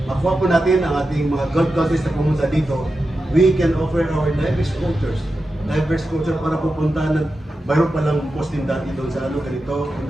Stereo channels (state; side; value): normal; both; correlation 0.91